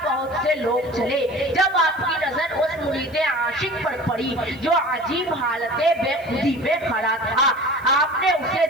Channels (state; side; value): noise; right; hiss, 28 dB below the sound